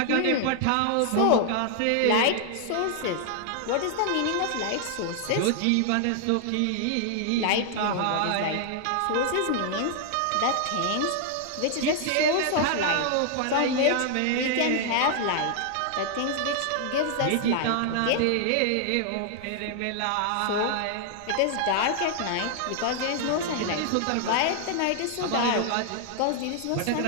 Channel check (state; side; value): different; both; correlation 0.00